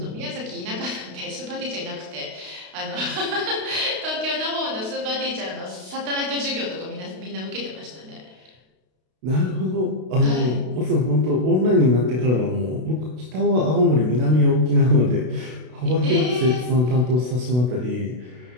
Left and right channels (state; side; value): late; left; 32 ms